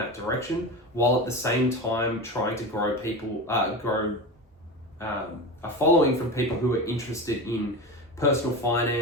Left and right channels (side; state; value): both; normal; correlation 0.25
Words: direction, while at the same time trying to grow a following from people who are interested in personal